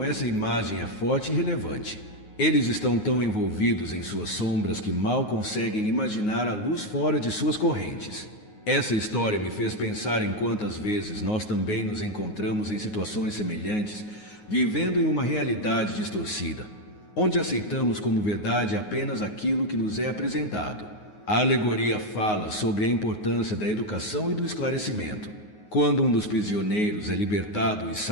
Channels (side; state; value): right; late; 9.5 ms